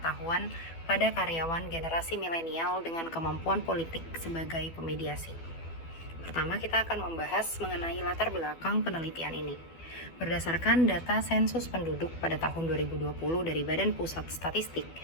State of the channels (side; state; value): right; late; 12 ms